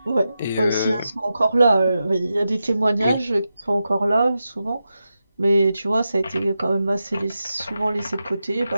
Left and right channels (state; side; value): inverted; both; correlation -0.90